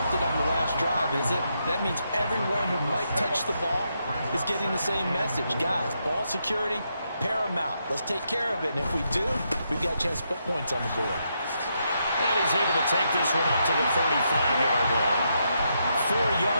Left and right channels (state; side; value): inverted; both; correlation -0.80